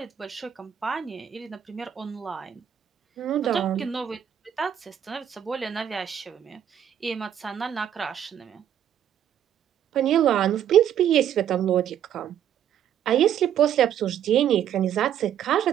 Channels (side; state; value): left; quieter; 9.8 dB